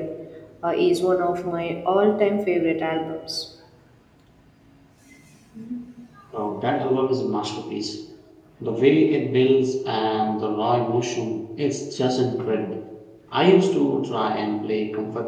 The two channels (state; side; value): identical; both; correlation 1.00